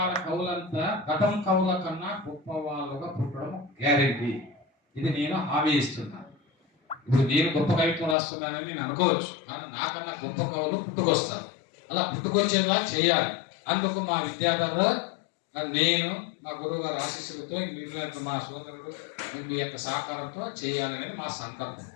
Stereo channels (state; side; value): drops out; right; at 8.2 s